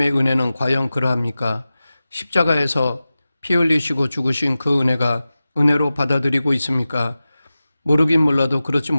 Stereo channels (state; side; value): inverted; both; correlation -0.95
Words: 은혜는 과연 그러합니까? 십자가에서 피 흘리시고 죽으신 그 은혜가 은혜로 받아들이고 있습니까? 모르긴 몰라도 그렇지